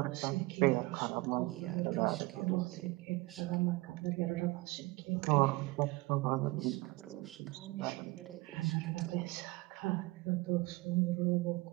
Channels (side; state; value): left; quieter; 22.0 dB